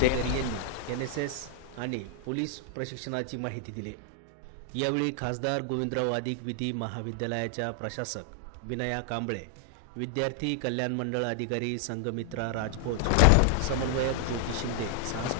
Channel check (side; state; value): both; different; correlation 0.00